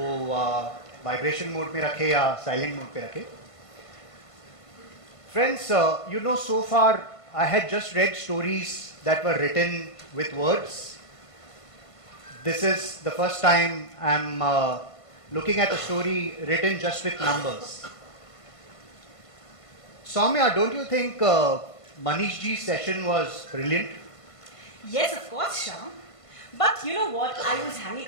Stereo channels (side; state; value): right; late; 1.5 ms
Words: वाइब्रेशन मोड में रखें या साइलेंट मोड पे रखें. Friends, you know, so far I had just read stories that were written with words. This is the first time I'm looking at a story written just with numbers. Soumya, don't you think Manish ji's session was brilliant? Yes, of course, Shyam. But you know what? I was hanging